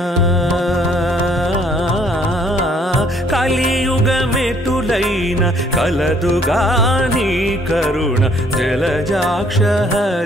కలియుగమెటులైన కలదుగా నీ కరుణ జలజాక్ష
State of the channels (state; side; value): normal; both; correlation 0.63